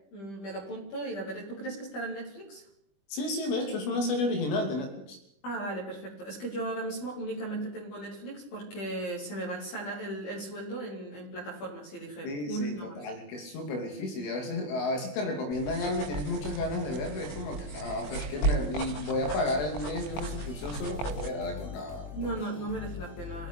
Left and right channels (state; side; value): late; right; 20 ms